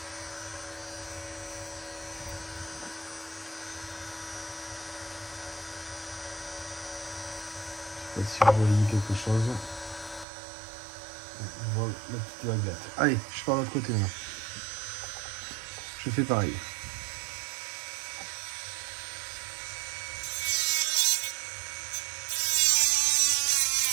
Je sais pas si je relis quelque chose. On voit la petite baguette. Allez, je pars de l'autre côté maintenant. Je fais pareil.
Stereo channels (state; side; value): drops out; left; at 10.2 s